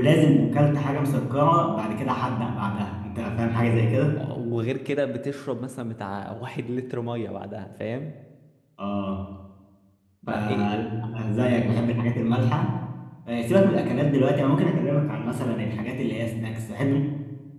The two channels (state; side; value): identical; both; correlation 1.00